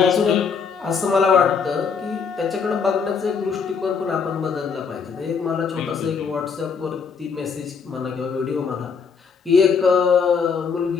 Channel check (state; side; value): quieter; right; 5.9 dB